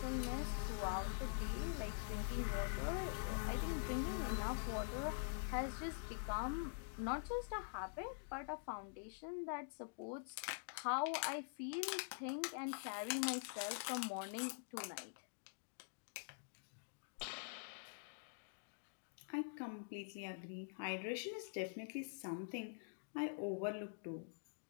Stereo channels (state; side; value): silent; right; digital silence